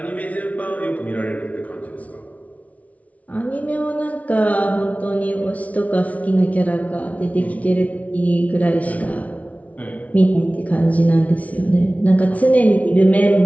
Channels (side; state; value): right; late; 0.068 ms